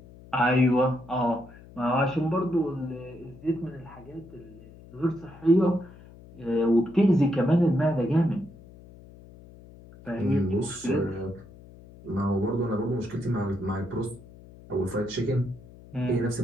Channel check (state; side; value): noise; left; hum, 20 dB below the sound